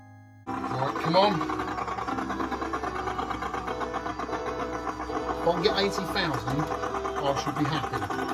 Right, come on. If I can get 80,000, I should be happy.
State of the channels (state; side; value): identical; both; correlation 1.00